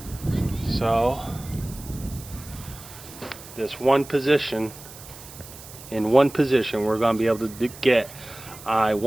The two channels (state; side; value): noise; right; hiss, 17 dB below the sound